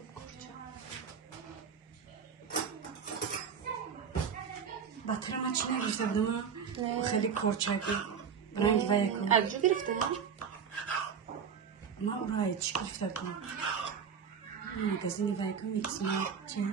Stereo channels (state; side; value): quieter; left; 6.9 dB